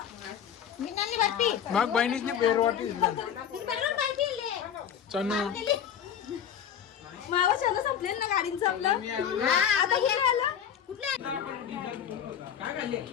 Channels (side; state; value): right; quieter; 8.8 dB